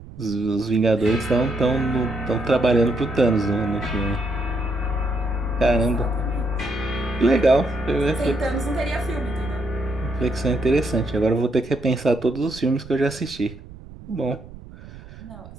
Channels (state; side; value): noise; right; rumble, 17 dB below the sound